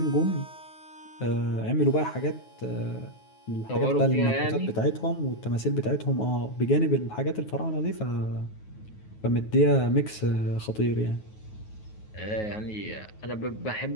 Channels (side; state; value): right; late; 9.3 ms